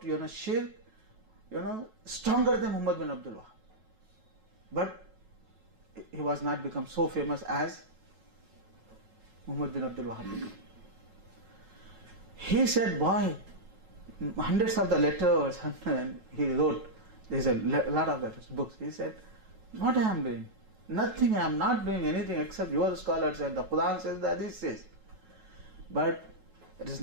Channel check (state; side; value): late; left; 9.2 ms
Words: Shirk, stronger than Muhammad bin Abdul Wahhab. But he was not become so famous as Muhammad bin Abdul Wahhab became. He said, boy, hundreds of the letters he wrote. There's a lot of letters, books. He said, what I am doing? Nothing, I am not doing anything except your scholars said, the Quran says, the Hadith says. But it is